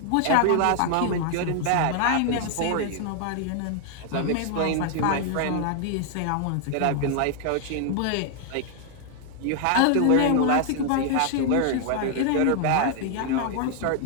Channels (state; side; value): different; both; correlation 0.00